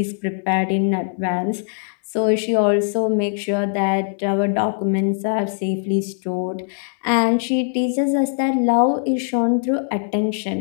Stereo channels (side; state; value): right; silent; digital silence